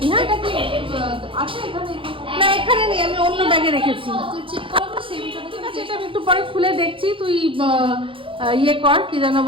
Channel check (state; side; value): late; left; 0.25 ms